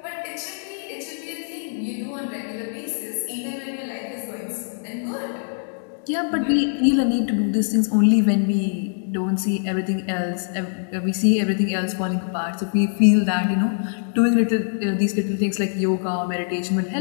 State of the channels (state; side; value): silent; right; digital silence